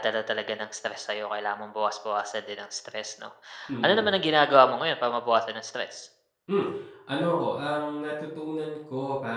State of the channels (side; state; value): both; identical; correlation 1.00